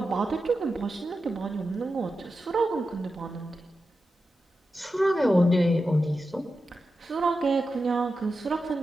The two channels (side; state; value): both; normal; correlation 0.91